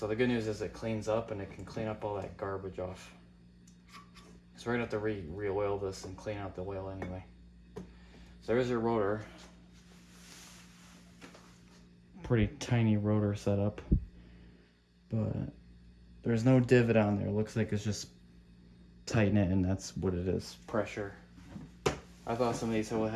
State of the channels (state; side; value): identical; both; correlation 1.00